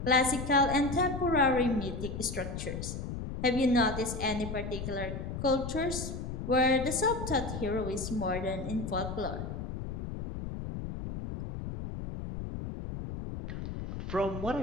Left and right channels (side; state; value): left; noise; rumble, 6 dB below the sound